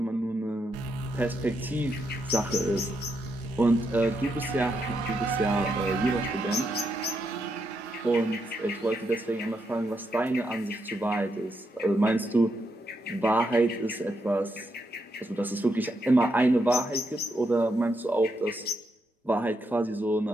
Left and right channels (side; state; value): both; normal; correlation 0.80